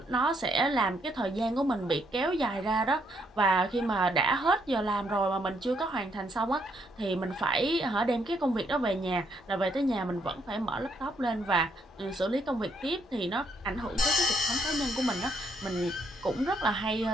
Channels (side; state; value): both; normal; correlation 0.72